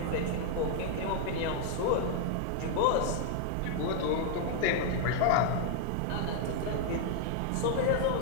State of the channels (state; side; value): different; both; correlation 0.00